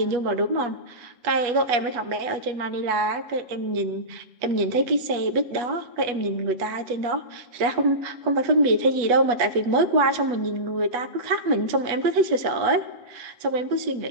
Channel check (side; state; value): left; late; 8.2 ms